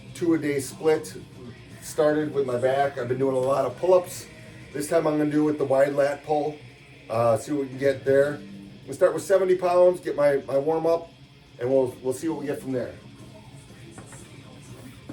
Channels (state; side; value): identical; both; correlation 1.00